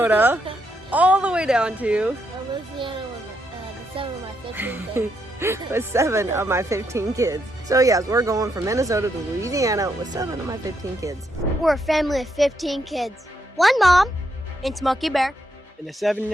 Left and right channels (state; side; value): normal; both; correlation 0.78